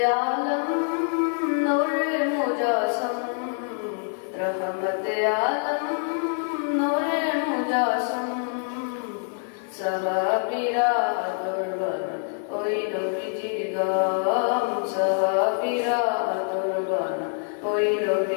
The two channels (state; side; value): silent; right; 55 dB below the other